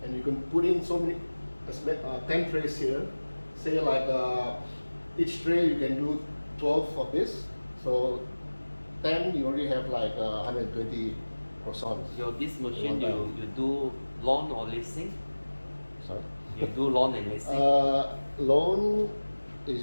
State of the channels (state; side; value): inverted; both; correlation -1.00